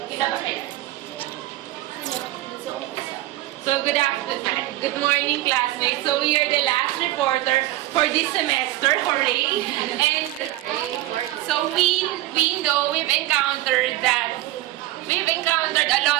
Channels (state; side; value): quieter; left; 16.6 dB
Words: So, good afternoon. Good morning, classmates. So, we are the last reporter for this semester, hooray! And so, we know we've encountered a